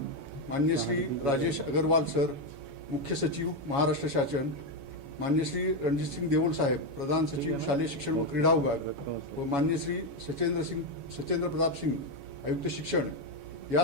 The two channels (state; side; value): late; left; 7.2 ms